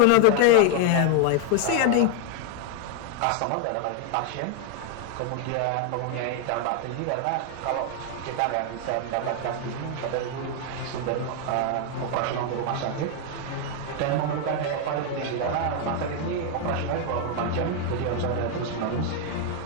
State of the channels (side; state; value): both; different; correlation 0.00